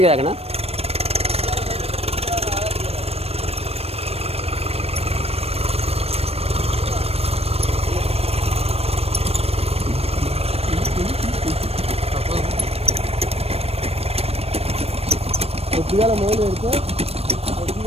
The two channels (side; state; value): left; late; 0.29 ms